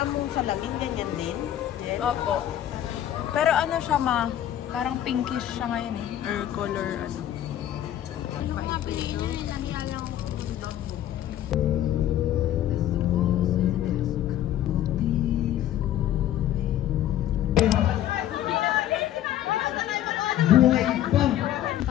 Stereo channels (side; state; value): right; quieter; 12.0 dB